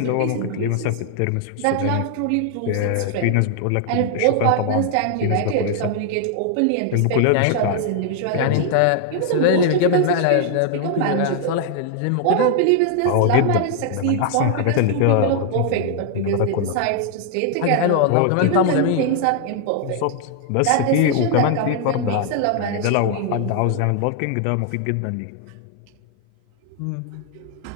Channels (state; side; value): different; both; correlation 0.00